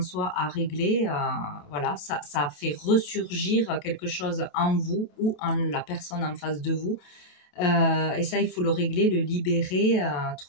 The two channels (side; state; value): right; late; 27 ms